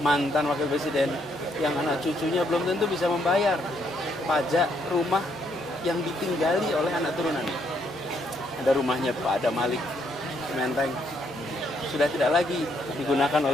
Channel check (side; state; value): both; normal; correlation 0.72